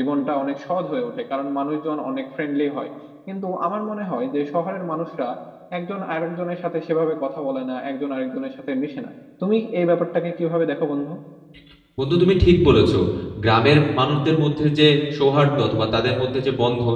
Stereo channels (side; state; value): both; identical; correlation 1.00